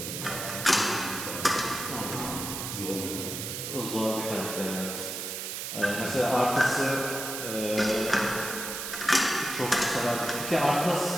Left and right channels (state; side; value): noise; right; hiss, 5 dB below the sound